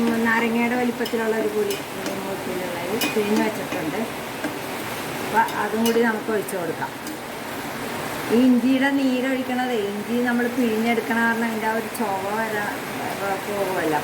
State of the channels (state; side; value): identical; both; correlation 1.00